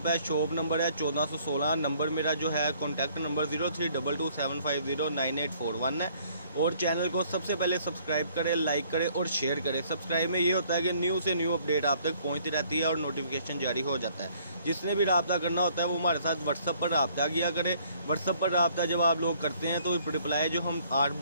है। शॉप नंबर है 1416। नंबर मेरा जो है कॉन्टैक्ट नंबर 032227509841 है। और चैनल को सबसे पहले सब्सक्राइब करें, लाइक करें और शेयर करें। सब्सक्राइब में ये होता है कि न्यू से न्यू अपडेट आप तक पहुंचती रहती है और नोटिफिकेशन जारी हो जाता है। जिसने भी रब्ता करना होता है वो हमारे साथ व्हाट्सअप पर रब्ता किया करे। व्हाट्सअप पर रब्ता जब आप लोग करते हैं तो रिप्लाई जो हम 8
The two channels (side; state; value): both; inverted; correlation -0.61